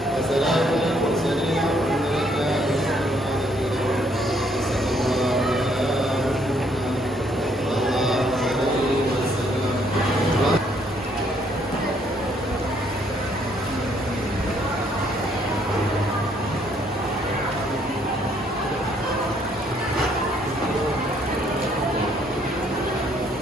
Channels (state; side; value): normal; both; correlation 0.67